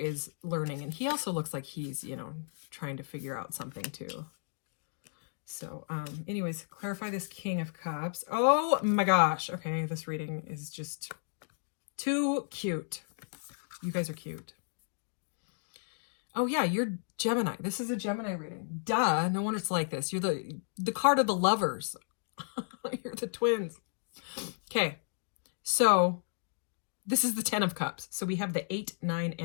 learning, and he also looks like he's, you know, trying to figure out something too. So, anyways, clarify this King of Cups. Oh my gosh. Okay, this reading is just too cute. You guys are cute. Oh yeah, you're Gemini. This is a Gemini reading. Duh, no wonder it's like this. You're the card of the lovers. You're the twins. Okay, so this is the 10 of Cups. So we have the 8, 9,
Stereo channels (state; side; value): silent; right; digital silence